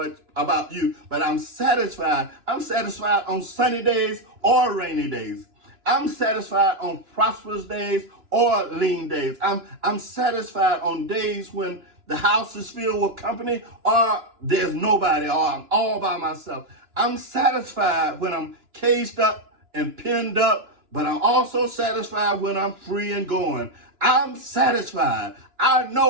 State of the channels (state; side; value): late; left; 2.9 ms